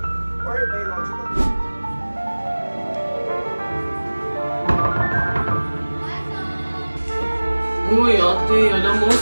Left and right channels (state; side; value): inverted; both; correlation -1.00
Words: Or a biological boy? Uy, ate, alam mo,